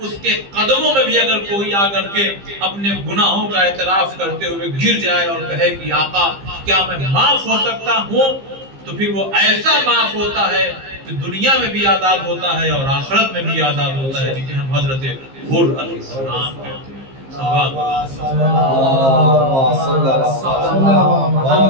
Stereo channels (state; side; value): late; left; 15 ms